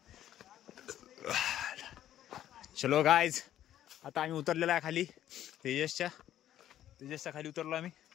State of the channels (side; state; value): right; quieter; 11.9 dB